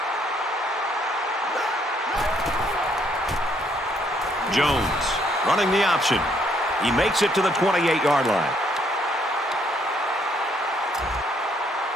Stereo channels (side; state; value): both; normal; correlation 0.69